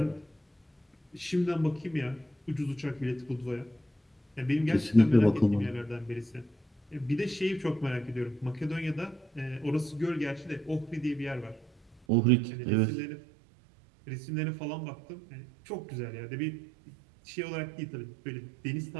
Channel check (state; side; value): drops out; left; at 12.0 s